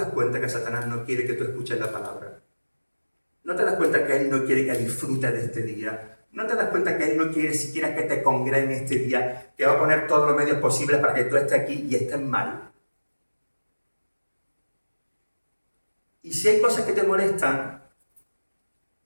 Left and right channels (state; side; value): inverted; both; correlation -1.00